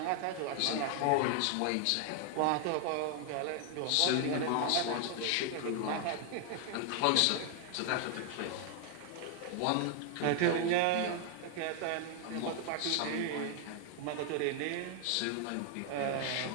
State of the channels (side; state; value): both; different; correlation 0.00